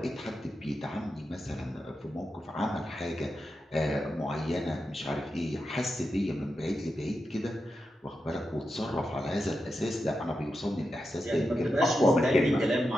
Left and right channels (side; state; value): both; normal; correlation 0.88